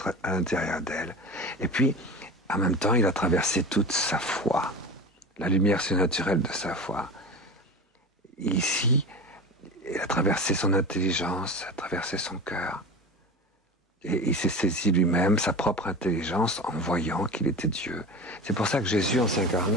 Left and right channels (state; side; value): normal; both; correlation 0.31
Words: à l'intérieur d'elle. Et puis, en même temps, il a traversé toute sa foi, la lumière surnaturelle de sa foi. ici, il a traversé son intelligence, a traversé son cœur. Et il s'est saisi lui-même sa propre intelligence en voyant qu'il était Dieu. C'est pour ça que Jésus, en